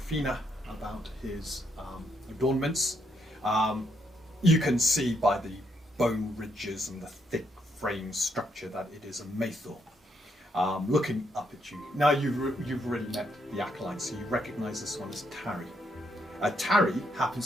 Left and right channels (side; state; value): both; normal; correlation 0.76